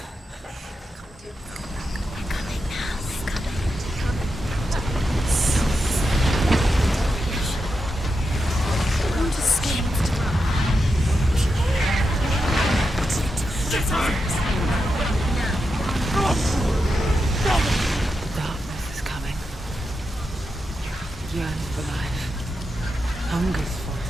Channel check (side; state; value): both; normal; correlation 0.87